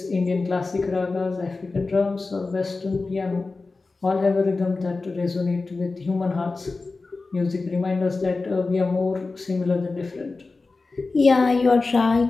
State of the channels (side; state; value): right; quieter; 3.7 dB